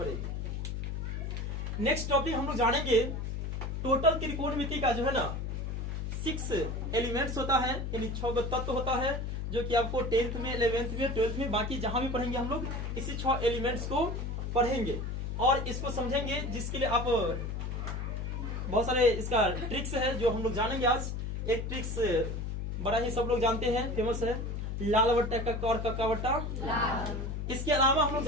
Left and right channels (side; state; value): left; noise; hum, 3 dB below the sound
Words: नेक्स्ट टॉपिक हम लोग जानेंगे टोटल त्रिकोणमिति का जो है ना 6 एलिमेंट्स होता है, यानी 6 तत्व होता है, जो कि आपको 10th में, 11th में, 12th में, बाकी जहां भी पढ़ेंगे हम लोग इसी 6 एलिमेंट्स को पढ़ेंगे और इसको समझेंगे, जिसके लिए आप बहुत सारे इसका ट्रिक्स है जो हम लोग जानेंगे आज। एक ट्रिक्स बड़ा ही सब लोग जानते हैं, फेमस है, लाल बट्टा कक्का और कक्का बट्टा लाल। इसके अलावा हम लोग